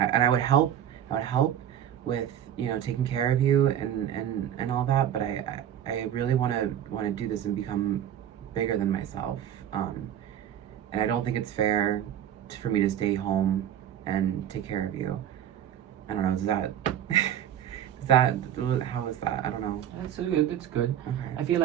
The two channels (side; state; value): left; quieter; 10.4 dB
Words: would help with taking care of you and all that, but I really want to do this and become bigger than myself, and I don't think it's fair for me to stay home and take care of you. I don't know, how is that? I don't know. It's good. It's good. Okay. I feel